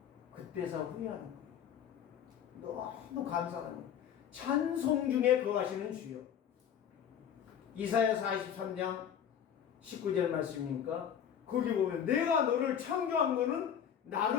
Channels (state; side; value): quieter; right; 8.9 dB